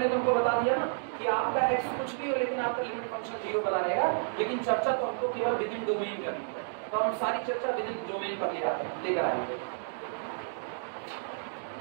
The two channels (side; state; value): left; silent; digital silence